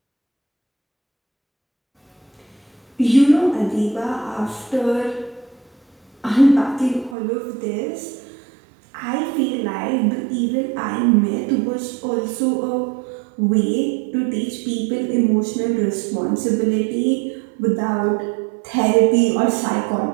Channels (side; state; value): left; drops out; at 7.2 s